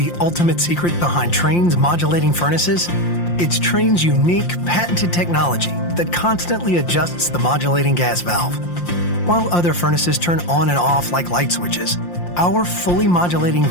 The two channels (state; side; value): late; right; 5.7 ms